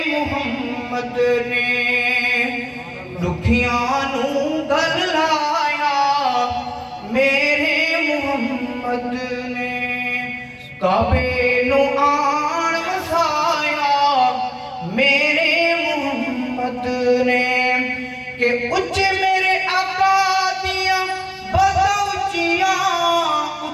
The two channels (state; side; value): identical; both; correlation 1.00